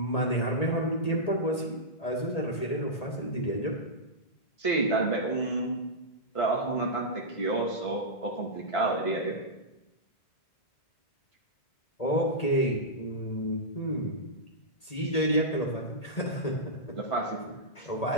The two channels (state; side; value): late; right; 1.8 ms